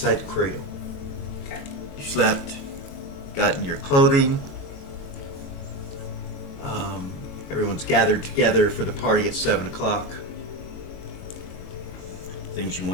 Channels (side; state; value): right; late; 22 ms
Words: the cradle. Okay. You slept, got in your clothing. Everyone's gathered together for the party at 7 o'clock. Things you